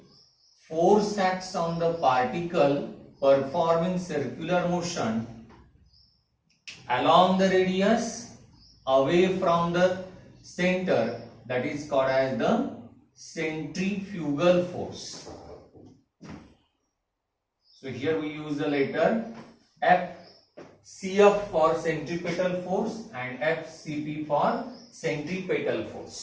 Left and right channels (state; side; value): identical; both; correlation 1.00